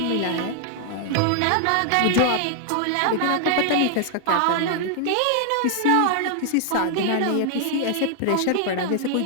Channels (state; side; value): different; both; correlation 0.00